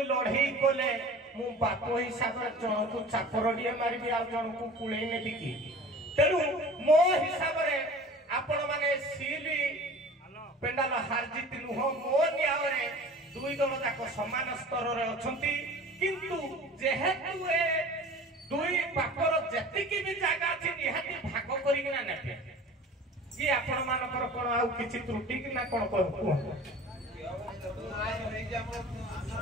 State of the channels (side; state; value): both; normal; correlation 0.42